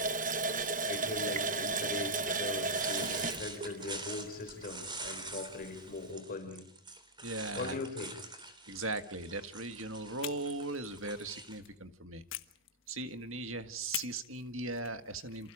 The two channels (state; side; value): normal; both; correlation -0.06